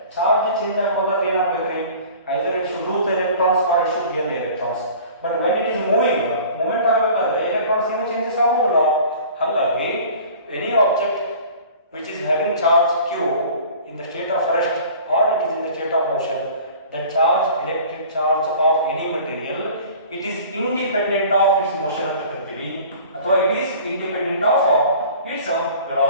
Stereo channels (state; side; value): inverted; both; correlation -0.45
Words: charge change ಆಗೋದಾದ್ರೆ ಏನಾಗಬೇಕ್ರಿ, either it should lose the electrons or it should gain the electrons. But when it is moving, movement ಆಗಬೇಕಾದ್ರೆ electrons ಏನು changes ಆಗೋದಿಲ್ಲ. ಹಾಗಾಗಿ any object which is having charge q in the state of rest or it is in the state of motion, the charge, electric charge of any material, it is independent of its motion ಅಂತ ಕರಿತೀವಿ, ಅಥವಾ it is independent of its